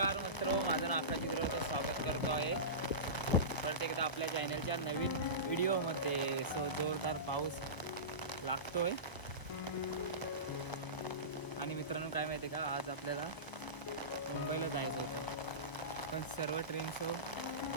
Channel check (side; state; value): right; late; 1.0 ms